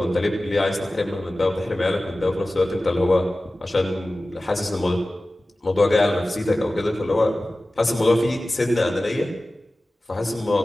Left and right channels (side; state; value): both; normal; correlation 0.96